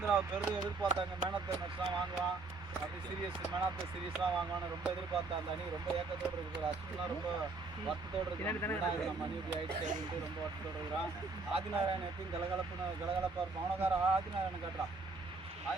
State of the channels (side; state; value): left; quieter; 3.8 dB